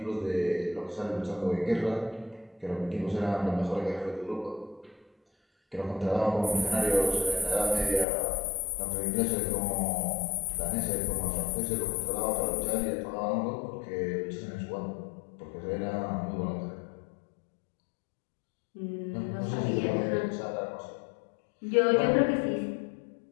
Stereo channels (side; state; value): right; drops out; at 8.1 s